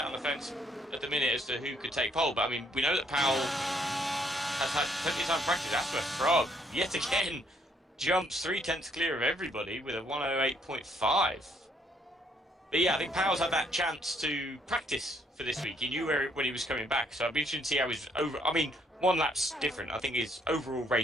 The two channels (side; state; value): both; normal; correlation 0.68